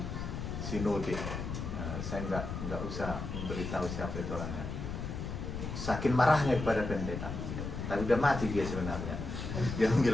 sinode. Saya nggak usah memberitahu siapa itu orangnya. Saking marahnya kepada pendeta, tapi udah mati dia sebenarnya. Dia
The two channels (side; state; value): left; noise; rumble, 5 dB below the sound